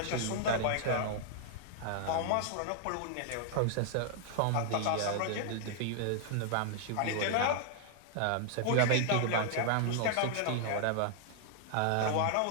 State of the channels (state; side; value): different; both; correlation -0.01